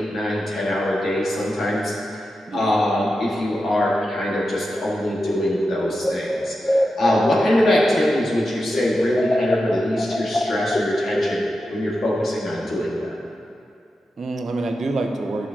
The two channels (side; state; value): both; normal; correlation 0.90